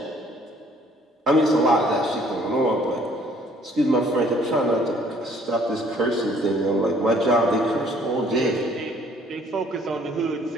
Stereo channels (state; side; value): normal; both; correlation 0.60